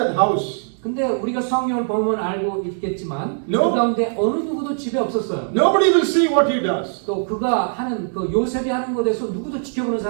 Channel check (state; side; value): silent; left; digital silence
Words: house. 근데 우리가 성경을 보면 알고 있겠지만 No. 그 가운데 어느 누구도 집에 없었어요. Nobody will see what he does. 또 그가 하는 그 요셉이 하는 것에서 누구도 지켜보는